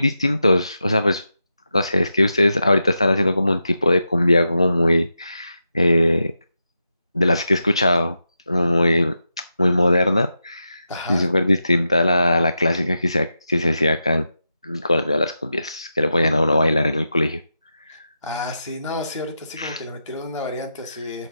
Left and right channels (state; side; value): inverted; both; correlation -0.88